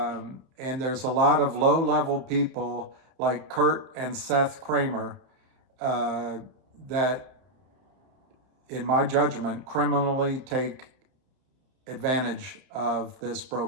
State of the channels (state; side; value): late; left; 31 ms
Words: there's a lot of low-level people like Kurt and Seth Kramer that, in my judgment, criminally take advantage of this